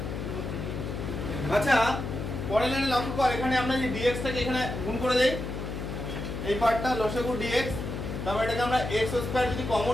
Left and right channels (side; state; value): left; noise; hum, 5 dB below the sound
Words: আচ্ছা পরের লাইনে লক্ষ্য কর, এখানে আমরা যে dx টাকে এখানে গুণ করে দেই, এই পার্টটা লসাগু dx, তারপর এটাকে আমরা x স্কয়ার যদি